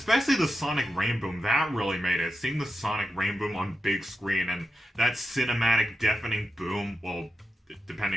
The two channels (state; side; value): normal; both; correlation 0.89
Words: the sonic rainboom, that really made it. Seeing the sonic rainboom on big screen and that cinematic deafening boom, well,